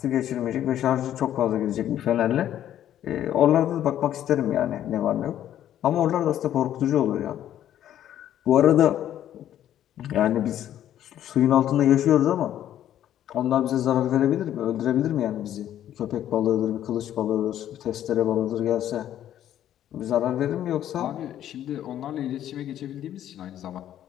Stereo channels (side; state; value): right; quieter; 11.4 dB